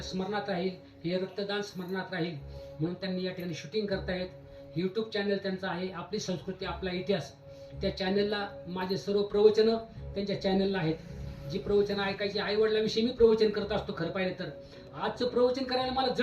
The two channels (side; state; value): both; identical; correlation 1.00